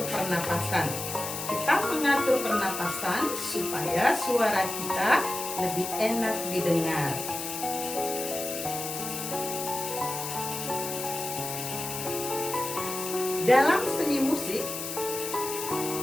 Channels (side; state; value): left; noise; hiss, 6 dB below the sound